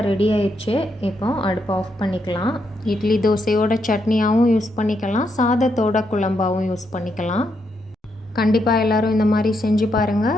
ரெடி ஆயிடுச்சு. இப்போ அடுப்பை ஆஃப் பண்ணிக்கலாம். இட்லி தோசையோட சட்னியாகவும் யூஸ் பண்ணிக்கலாம், சாதத்தோட குழம்பாகவும் யூஸ் பண்ணிக்கலாம். கண்டிப்பாக எல்லோரும் இந்த மாதிரி செஞ்சு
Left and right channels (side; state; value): both; normal; correlation 0.79